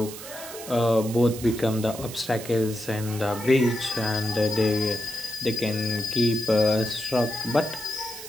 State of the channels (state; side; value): noise; right; hiss, 12 dB below the sound